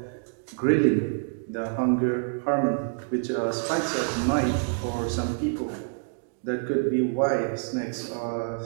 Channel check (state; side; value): silent; left; digital silence